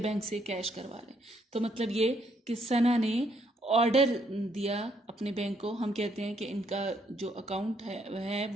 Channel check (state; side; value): normal; both; correlation 0.71